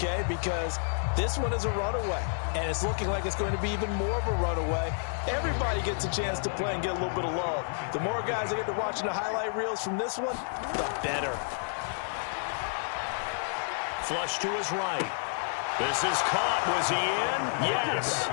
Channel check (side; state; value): right; silent; digital silence